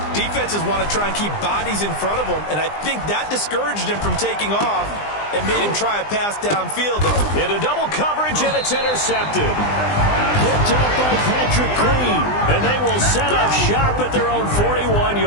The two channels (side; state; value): right; late; 20 ms